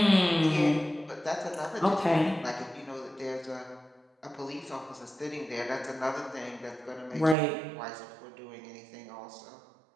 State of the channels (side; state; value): left; drops out; at 7.4 s